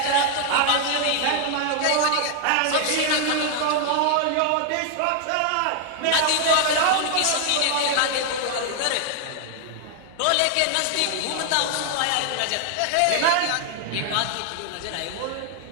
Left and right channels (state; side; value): different; both; correlation 0.00